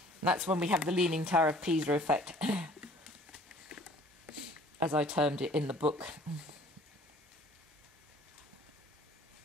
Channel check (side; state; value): both; normal; correlation 0.52